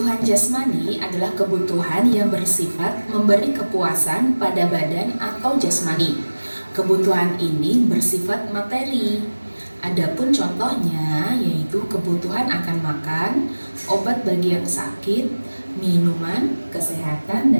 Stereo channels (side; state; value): both; inverted; correlation -1.00